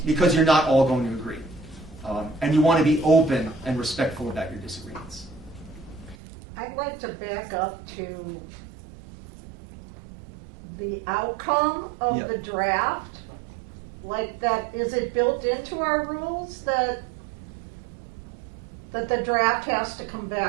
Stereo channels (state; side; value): drops out; left; at 6.2 s